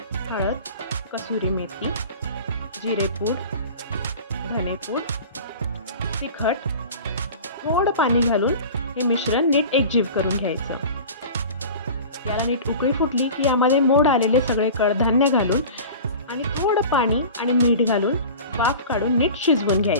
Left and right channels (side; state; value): both; inverted; correlation -0.38